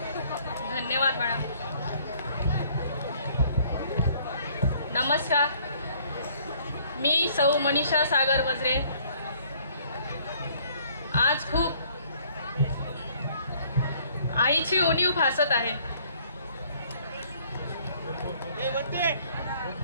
धन्यवाद मॅडम. नमस्कार, मी सौ मनीषा सागर वज्रे. आज खूप आईची उणीव भासत आहे.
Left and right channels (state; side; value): inverted; both; correlation -0.60